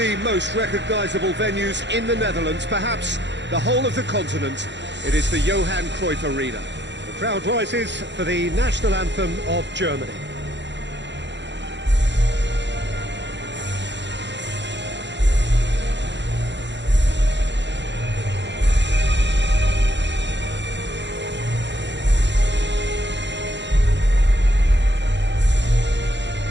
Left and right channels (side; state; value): left; late; 0.52 ms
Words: most recognisable venues in the Netherlands, perhaps the whole of the continent. It is the Johan Cruyff Arena. The crowd rises for the national anthem of Germany.